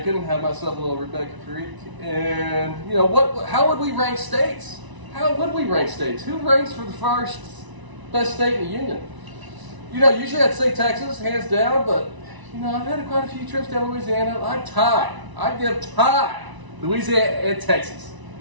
had myself a little Rebecca Creek, and you know, how would we rank states? How would we rank states? Who ranks for the first best state in the union? You know, usually I'd say Texas, hands down, but you know, I've had quite a few trips down to Louisiana. I'd give tie Louisiana and Texas.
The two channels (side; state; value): left; late; 1.0 ms